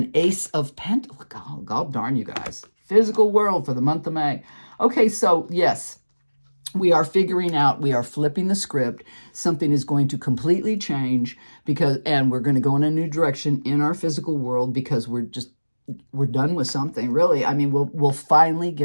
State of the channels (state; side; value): inverted; both; correlation -1.00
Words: Ace of Pentacles. God darn you guys. Physical world for the month of May. Okay, so yes, we are figuring out, we are flipping the script. Something is going to completely change and we're going to go in a new direction in our physical world because we're done with something, really. I mean, we'll finally